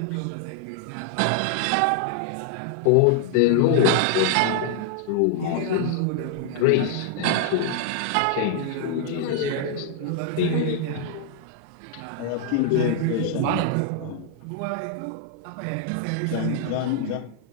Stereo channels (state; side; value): different; both; correlation 0.00